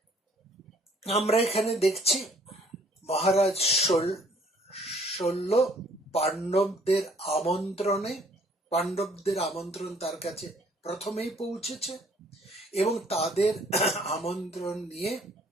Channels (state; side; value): normal; both; correlation 0.60